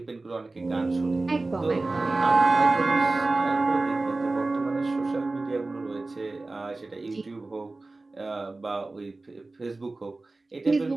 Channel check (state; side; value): quieter; left; 3.2 dB